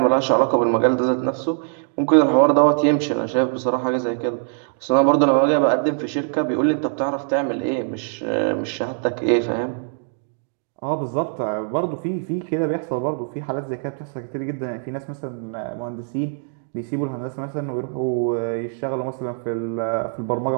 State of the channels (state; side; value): silent; left; 64 dB below the other